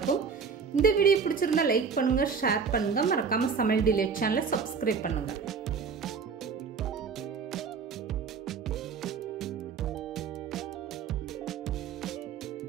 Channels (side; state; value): left; quieter; 5.8 dB